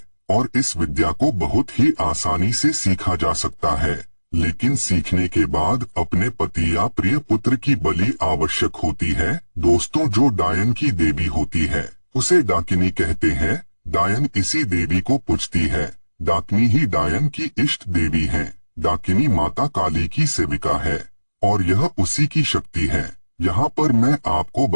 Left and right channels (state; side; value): inverted; both; correlation -1.00